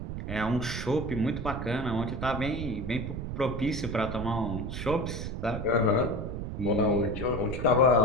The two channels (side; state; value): right; noise; rumble, 5 dB below the sound